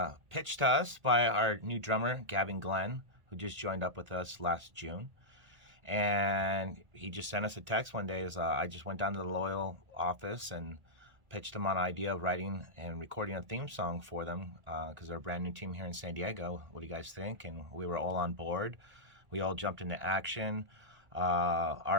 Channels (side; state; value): left; late; 1.9 ms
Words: pitched to us by our new drummer, Gavin Glenn, who just joined up with us last June. And he just sent us a text one day. I just went down to the Loyal office and pitched them on an idea of writing and recording a theme song for them because they're a brand new team here in San Diego. What do you guys think? And we were all on board. We all jumped into action.